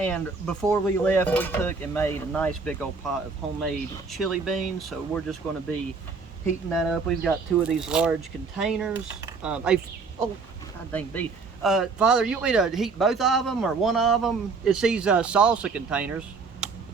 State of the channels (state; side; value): quieter; left; 4.6 dB